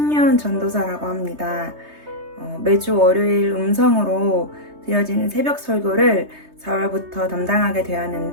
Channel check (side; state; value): left; late; 3.2 ms